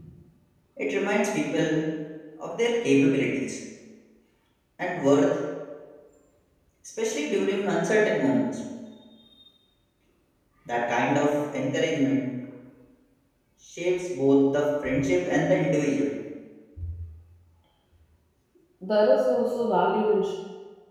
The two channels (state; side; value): identical; both; correlation 1.00